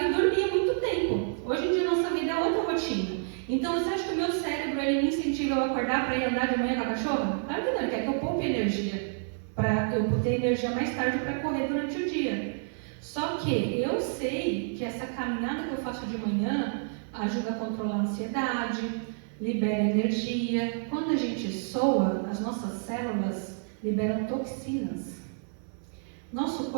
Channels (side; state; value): left; silent; 58 dB below the other